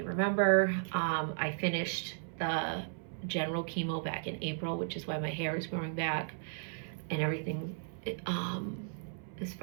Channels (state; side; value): silent; left; 54 dB below the other